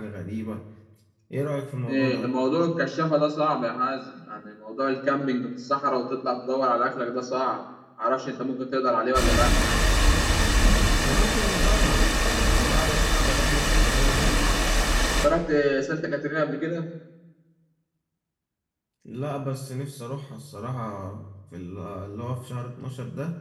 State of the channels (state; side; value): identical; both; correlation 1.00